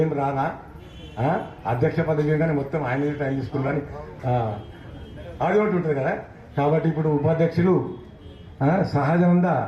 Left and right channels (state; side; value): identical; both; correlation 1.00